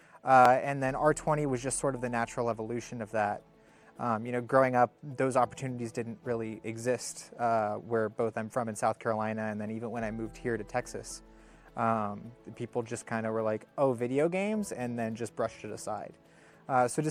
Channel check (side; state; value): both; identical; correlation 1.00